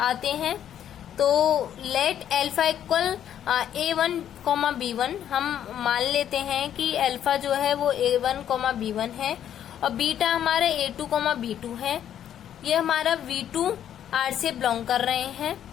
आते हैं। तो let alpha equal A1, B1, हम मान लेते हैं कि अल्फा जो है वो A1, B1 है और बीटा हमारा A2, B2 है। ये हमारा V2R से बिलोंग कर रहे हैं।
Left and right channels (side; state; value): right; quieter; 10.2 dB